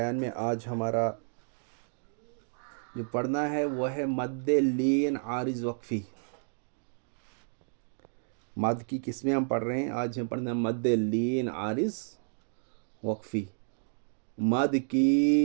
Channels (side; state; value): left; silent; digital silence